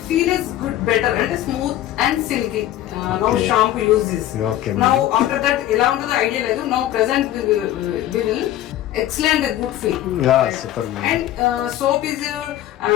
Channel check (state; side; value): quieter; right; 13.2 dB